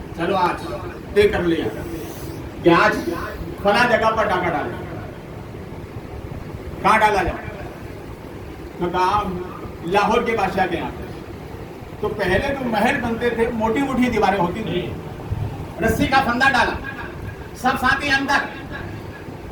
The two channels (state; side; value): identical; both; correlation 1.00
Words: चलो आज तय कर लिया कि आज फला जगह पर डाका डाले। कहाँ डाला जाए? तो कहा लाहौर के बादशाह के यहाँ। तो पहले जो महल बनते थे, मोटी मोटी दीवारें होती थी, रस्सी का फंदा डाला, सब साथी अंदर,